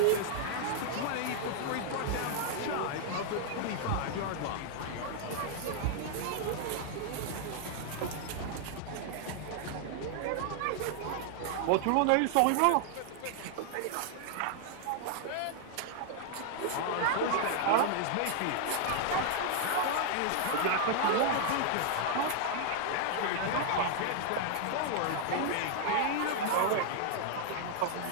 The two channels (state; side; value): different; both; correlation 0.00